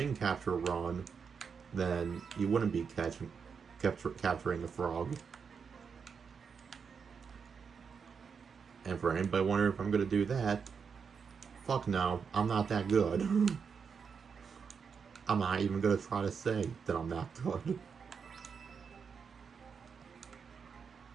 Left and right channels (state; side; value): quieter; left; 6.1 dB